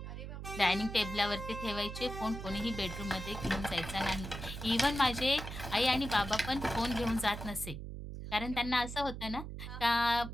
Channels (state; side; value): noise; right; hum, 8 dB below the sound